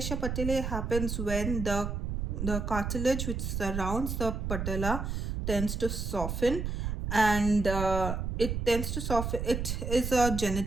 patellae happens when the cartilage which surrounds the patella tends to soften, and it tends to soften. It is a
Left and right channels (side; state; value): right; noise; rumble, 3 dB below the sound